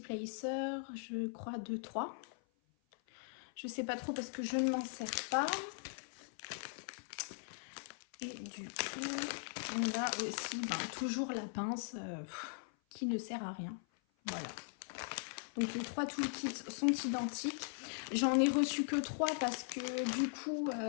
je crois 2-3. Je sais pas trop parce que je ne m'en sers pas. Et du coup, on a aussi toujours la pince qui ne sert à rien. Voilà. Donc les trois toolkits sont identiques. J'en ai reçu que 3 parce que du coup,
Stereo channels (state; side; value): silent; right; 51 dB below the other